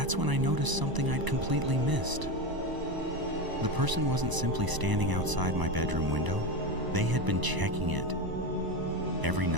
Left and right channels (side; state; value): left; late; 1.0 ms